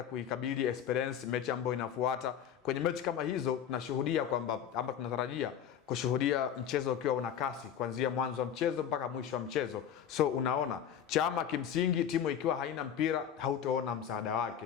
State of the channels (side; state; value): right; quieter; 9.0 dB